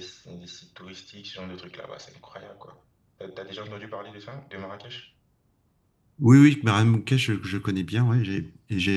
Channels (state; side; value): identical; both; correlation 1.00